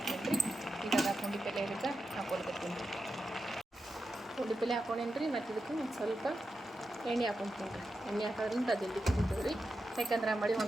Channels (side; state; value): both; normal; correlation 0.89